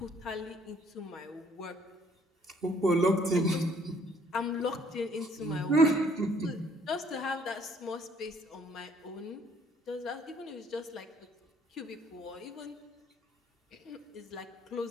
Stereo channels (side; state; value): both; normal; correlation 0.62